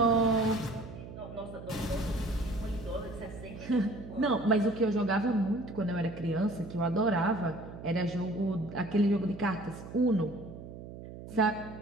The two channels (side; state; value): right; noise; hum, 13 dB below the sound